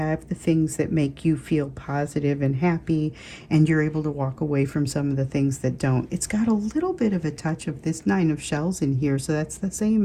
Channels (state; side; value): identical; both; correlation 1.00